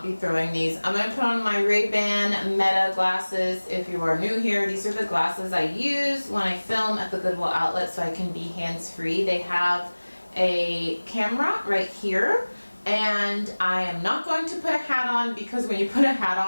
be throwing these. I'm going to put on my Ray-Ban Meta glasses. If you are new here, these are the glasses I use when I film at the Goodwill outlet so I can be hands-free. They have a camera right here, and I am not going to put a hat on because when you put a hat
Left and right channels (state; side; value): inverted; both; correlation -1.00